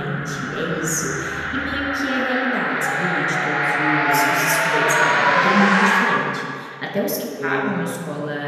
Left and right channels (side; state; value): both; identical; correlation 1.00